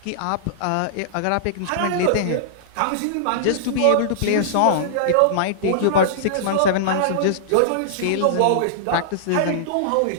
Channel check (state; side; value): different; both; correlation -0.02